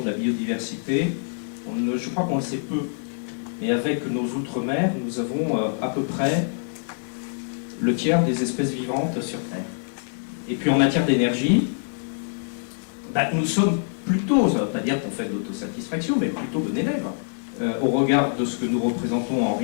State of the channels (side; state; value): right; silent; digital silence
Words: de la biodiversité, je crois qu'on le sait peu. Et avec nos outre-mer, nous avons à peu près le tiers des espèces vivantes sur Terre. Et puis en matière d'énergie, nous sommes plutôt, ça ne veut pas dire qu'on fait de l'autosatisfaction, mais plutôt bon élève. Au regard de ce que nous représentons en